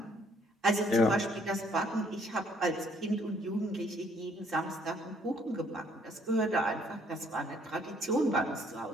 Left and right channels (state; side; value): normal; both; correlation 0.65